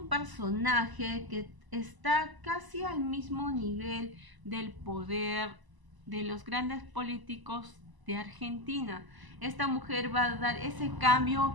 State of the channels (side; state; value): left; late; 1.0 ms